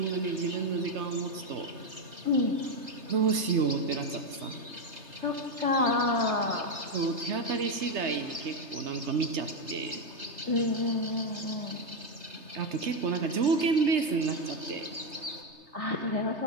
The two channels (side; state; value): left; late; 3.3 ms